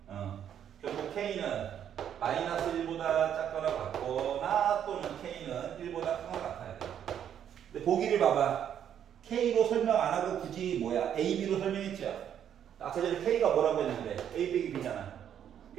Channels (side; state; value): left; quieter; 9.4 dB